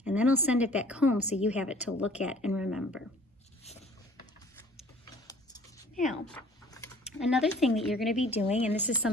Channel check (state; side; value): normal; both; correlation 0.51